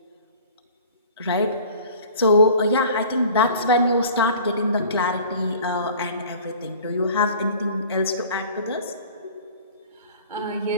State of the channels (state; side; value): inverted; both; correlation -0.46